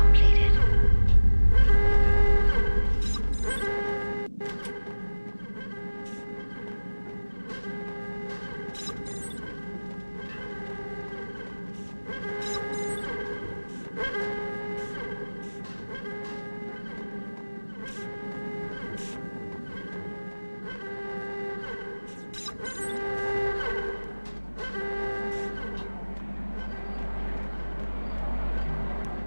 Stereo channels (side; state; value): both; inverted; correlation -1.00